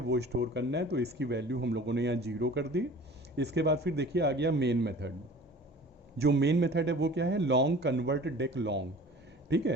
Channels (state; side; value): normal; both; correlation 0.44